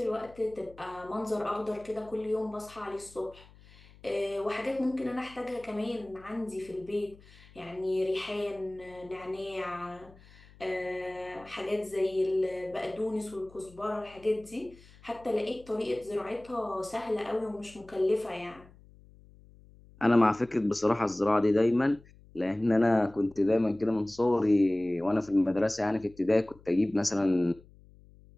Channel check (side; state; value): left; noise; hum, 24 dB below the sound